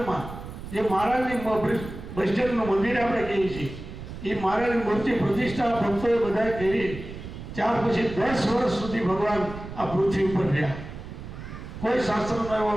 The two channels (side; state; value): right; noise; rumble, 11 dB below the sound